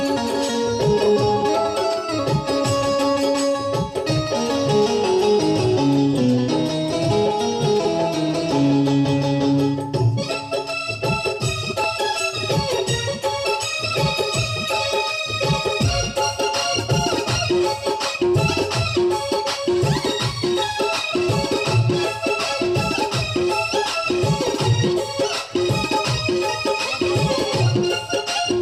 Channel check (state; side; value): identical; both; correlation 1.00